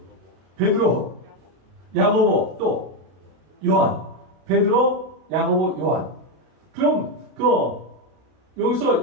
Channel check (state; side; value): late; left; 32 ms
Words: 베드로, 야고보, 또 요한. 베드로, 야고보, 요한. 그럼 여기서